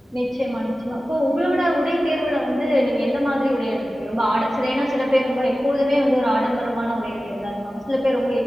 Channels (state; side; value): normal; both; correlation 0.95